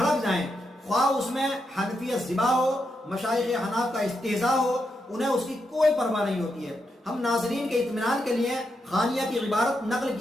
جائیں، خواہ اس میں حنفیت ذبح ہو، مشائخ حناف کا استہزاء ہو، انہیں اس کی کوئی پرواہ نہیں ہوتی ہے۔ ہم ناظرین کے اطمینان کے لیے خانیہ کی عبارت نقل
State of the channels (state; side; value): normal; both; correlation 0.83